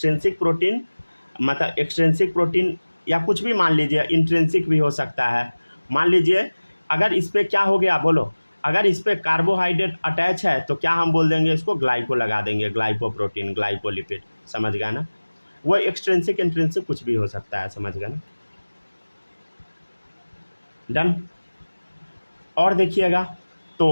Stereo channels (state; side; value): inverted; both; correlation -1.00